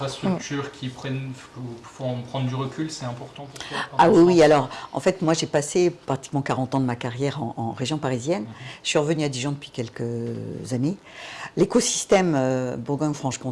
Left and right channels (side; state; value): both; identical; correlation 1.00